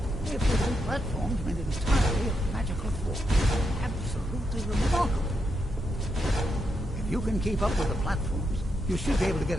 If the two platforms made entirely of magical force. Absolutely remarkable. If you can keep up with the platforms, you should be able to get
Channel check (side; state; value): both; normal; correlation 0.83